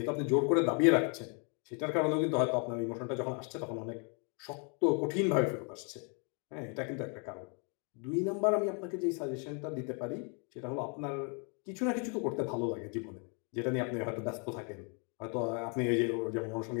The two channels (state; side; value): quieter; right; 38.2 dB